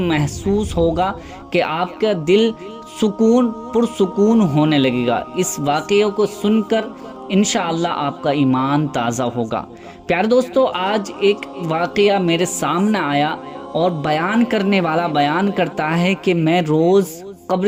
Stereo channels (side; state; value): both; identical; correlation 1.00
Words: ہوگا کہ آپ کا دل پرسکون ہونے لگے گا۔ اس واقعے کو سن کر انشاءاللہ آپ کا ایمان تازہ ہوگا۔ پیارے دوستو، آج ایک واقعہ میرے سامنے آیا اور بیان کرنے والا بیان کرتا ہے کہ میں روز